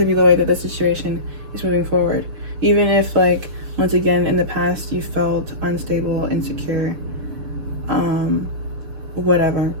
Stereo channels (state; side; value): late; left; 6.7 ms